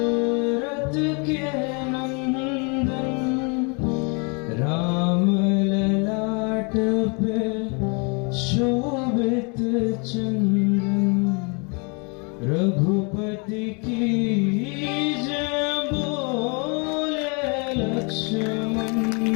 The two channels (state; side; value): quieter; right; 34.1 dB